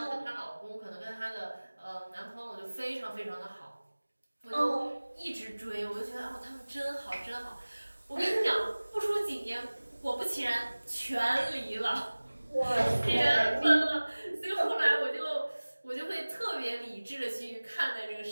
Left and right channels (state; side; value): inverted; both; correlation -1.00